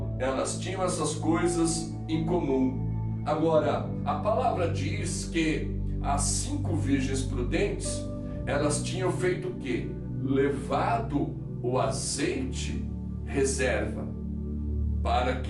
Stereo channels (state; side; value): identical; both; correlation 1.00